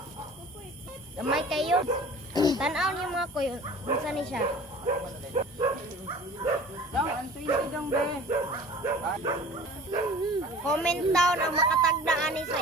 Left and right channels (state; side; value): normal; both; correlation 0.43